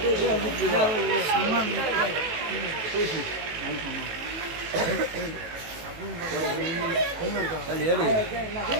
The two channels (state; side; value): late; left; 18 ms